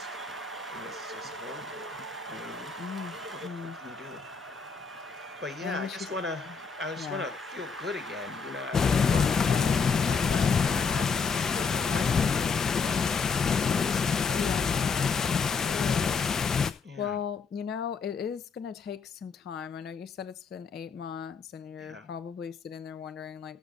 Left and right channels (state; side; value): quieter; right; 5.3 dB